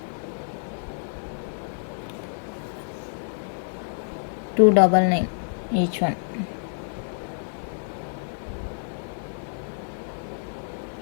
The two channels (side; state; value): right; silent; 60 dB below the other